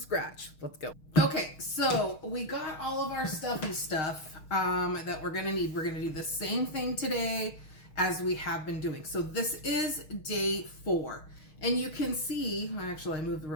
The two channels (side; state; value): right; late; 6.4 ms